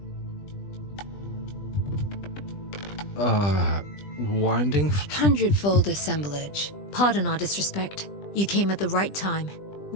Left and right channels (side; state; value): right; late; 20 ms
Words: Winding? Hundredfold assemblage. Pardon our disrespect. You came at the right time.